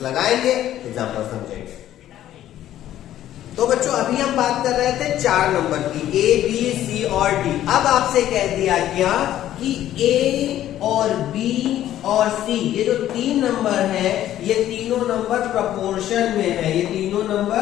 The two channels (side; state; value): right; quieter; 12.5 dB